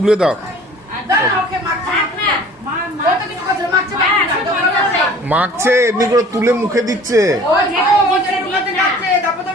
দাও। দাও না, ওকে মাখছে। থাক না মা ও তো কিছু করছে না, মাখছে, মাখছে না। যখন মাখছে। মাখছে এমনি করে তুলে মুখে দিচ্ছে। ওই যে ও যে ঢুকাতে যাচ্ছে, তারপর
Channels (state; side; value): normal; both; correlation 0.49